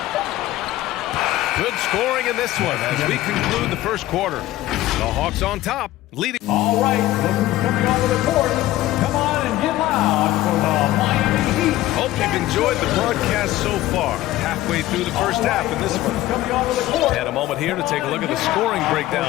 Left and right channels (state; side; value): quieter; right; 15.7 dB